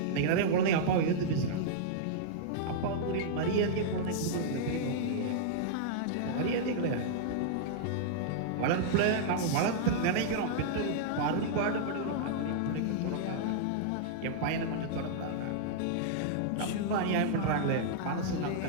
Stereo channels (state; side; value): different; both; correlation -0.02